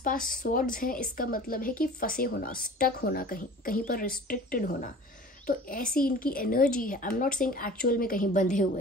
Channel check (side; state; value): both; normal; correlation 0.43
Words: स्वॉर्ड्स हैं, इसका मतलब है कि फंसे होना, स्टक होना, कहीं पर रिस्ट्रिक्टेड होना। तो ऐसी इनकी एनर्जी है। I am not saying actual में कहीं बंधे